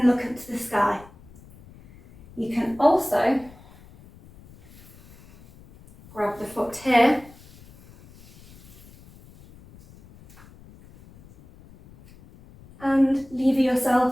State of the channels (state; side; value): noise; left; rumble, 23 dB below the sound